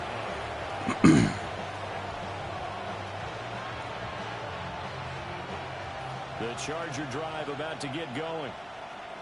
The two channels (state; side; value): identical; both; correlation 1.00